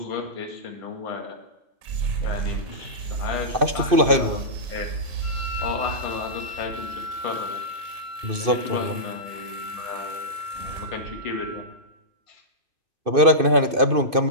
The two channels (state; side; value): late; left; 2.5 ms